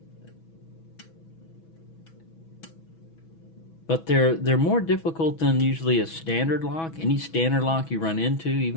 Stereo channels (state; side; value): late; right; 6.1 ms